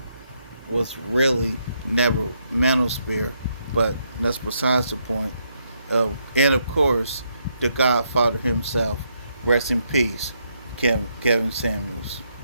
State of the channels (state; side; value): inverted; both; correlation -0.76